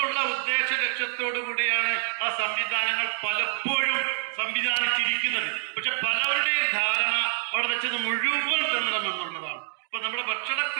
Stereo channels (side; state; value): left; silent; 59 dB below the other